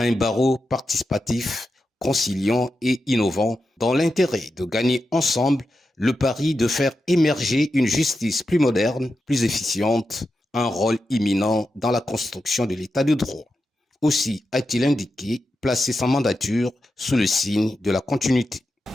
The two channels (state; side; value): normal; both; correlation 0.89